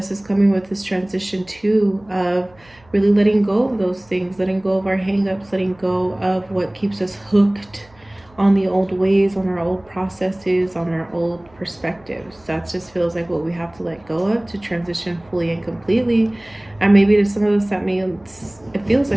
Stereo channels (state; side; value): noise; right; hum, 29 dB below the sound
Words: is coming with this transition too of really letting go of those things, letting go of our hang-ups, letting go of what keeps us hooked on the old ways, on our old processes, on our old perspectives. That just feels like what we have to let go of to transition fully and completely. And maybe to some of us that means it feels